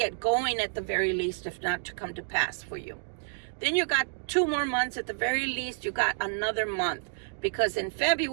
going at the very least, if not to come to pass for you. Then you got 2 more months at the very least. You got another month. Because in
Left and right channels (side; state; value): left; silent; digital silence